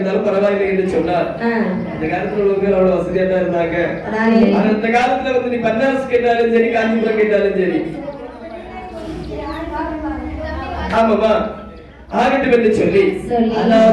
பரவாயில்லை என்று சொன்னார். அந்த காலத்துல உள்ளவங்க அவ்வளவு வசதியா தான் இருந்தாங்க. அந்த காலத்துல வந்து நீ பன்னாரஸ் கேட்டாலும் சரி, காஞ்சிபுரம் கேட்டாலும் சரி. ஆமாமா. ஆகட்டும் என்று சொல்லி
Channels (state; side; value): identical; both; correlation 1.00